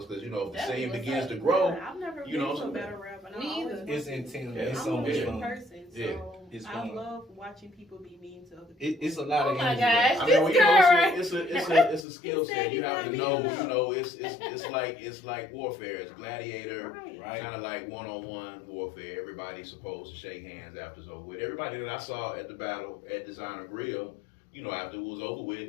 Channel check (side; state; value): right; drops out; at 12.1 s